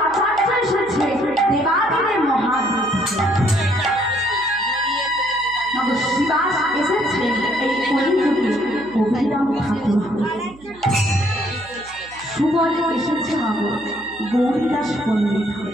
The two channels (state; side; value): noise; right; hum, 23 dB below the sound